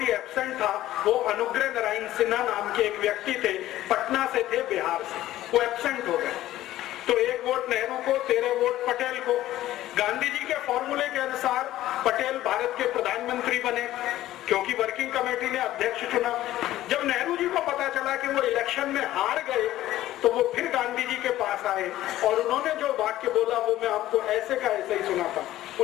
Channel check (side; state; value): right; quieter; 14.5 dB